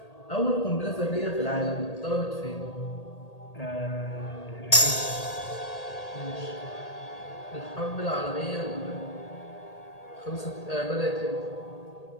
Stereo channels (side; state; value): right; late; 1.8 ms